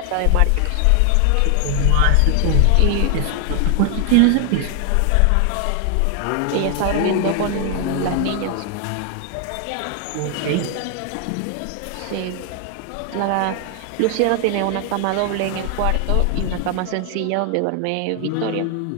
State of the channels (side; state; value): both; different; correlation 0.00